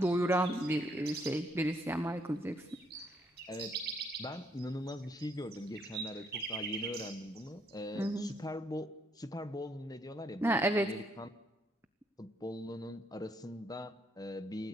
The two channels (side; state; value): both; normal; correlation 0.72